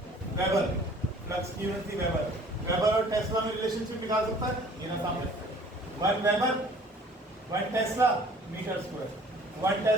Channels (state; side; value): normal; both; correlation 0.52